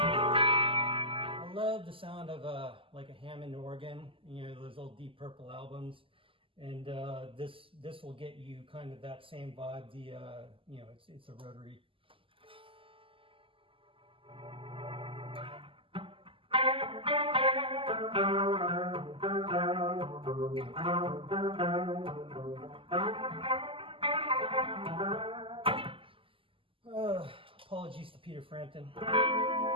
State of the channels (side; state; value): left; late; 0.25 ms